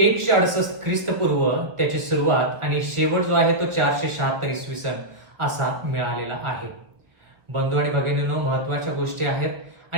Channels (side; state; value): left; late; 1.1 ms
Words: ख्रिस्तपूर्व त्याची सुरुवात आणि शेवट जो आहे तो 476 इसवी सन असा मिळालेला आहे. बंधू आणि भगिनींनो, महत्वाच्या गोष्टी आहेत.